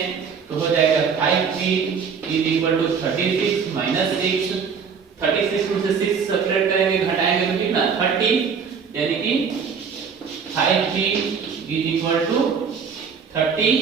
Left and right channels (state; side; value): quieter; left; 6.2 dB